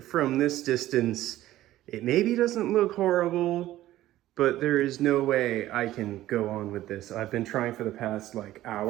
from this distance, it maybe doesn't look horrible, but there is no way I can go on with this. I've been trying for the past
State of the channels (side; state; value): left; quieter; 14.7 dB